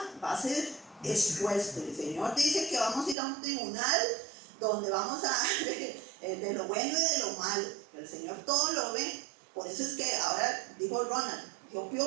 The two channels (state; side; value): drops out; left; at 3.2 s